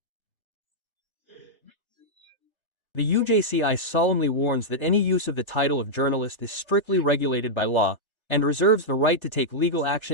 The UJCI solemnly warns that any use of the title of journalist is strictly regulated by law, and reserves the right to take legal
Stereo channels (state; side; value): late; right; 1.3 ms